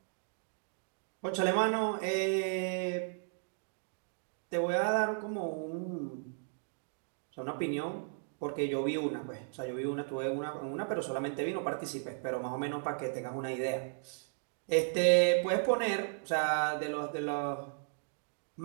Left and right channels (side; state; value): left; silent; digital silence